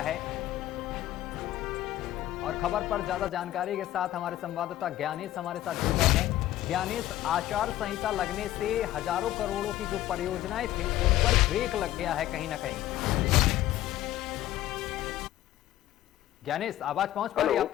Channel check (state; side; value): quieter; right; 14.0 dB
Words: है। और खबर पर ज्यादा जानकारी के साथ हमारे संवाददाता ज्ञानेश हमारे साथ जुड़ गए हैं। ज्ञानेश, आचार संहिता लगने से हजारों करोड़ों की जो परियोजनाएं थी उन पर ब्रेक लग गया है कहीं ना कहीं। ज्ञानेश, आवाज पहुंच पा रही है आप